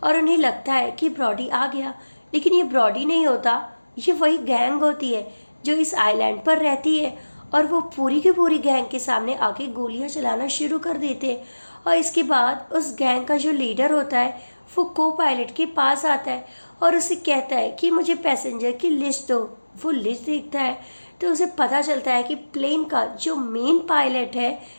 और उन्हें लगता है कि ब्रॉडी आ गया, लेकिन ये ब्रॉडी नहीं होता, ये वही गैंग होती है जो इस आइलैंड पर रहती है। और वो पूरी की पूरी गैंग के सामने आके गोलियां चलाना शुरू कर देते हैं। और इसके बाद उस गैंग का जो लीडर होता है वो को पायलट के पास आता है और उसे कहता है कि मुझे पैसेंजर की लिस्ट दो। वो लिस्ट देखता है तो उसे पता चलता है कि प्लेन का जो मेन पायलट है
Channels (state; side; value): inverted; both; correlation -1.00